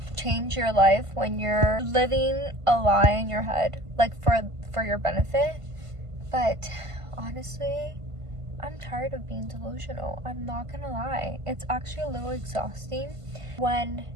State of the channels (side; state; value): left; late; 1.5 ms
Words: change your life when you're living a lie in your head, like for your benefit. But honestly, I'm tired of being delusional. I'm not gonna lie. It's actually a little exhausting when